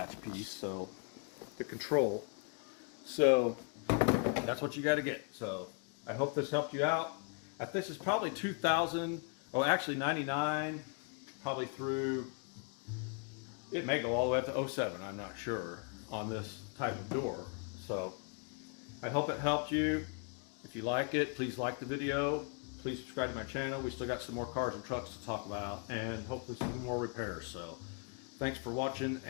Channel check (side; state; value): right; quieter; 36.9 dB